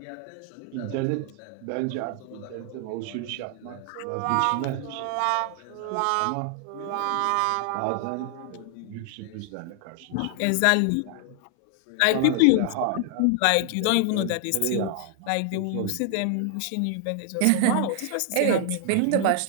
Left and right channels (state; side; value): different; both; correlation 0.00